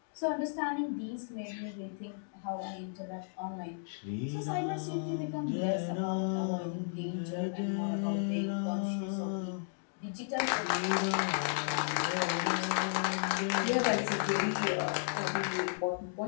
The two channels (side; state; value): right; silent; digital silence